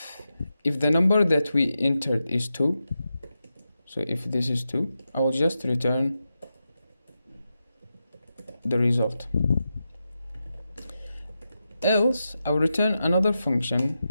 the number that we entered is 2, so if this is 2, I will just return the result. Else, I will return another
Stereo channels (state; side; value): inverted; both; correlation -0.89